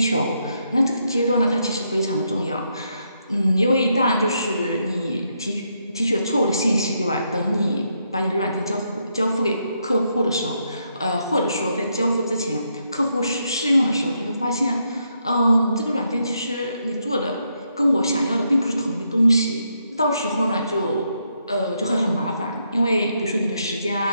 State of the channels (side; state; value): both; inverted; correlation -0.78